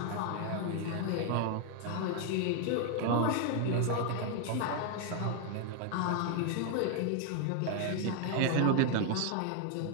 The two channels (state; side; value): different; both; correlation 0.00